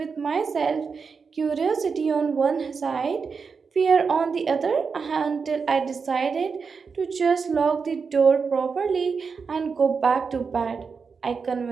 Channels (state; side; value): quieter; left; 5.4 dB